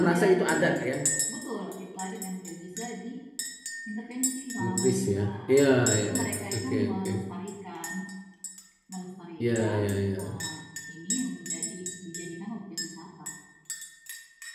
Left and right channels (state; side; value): identical; both; correlation 1.00